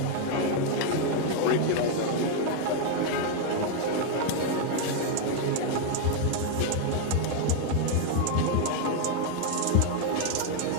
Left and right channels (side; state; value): both; different; correlation 0.00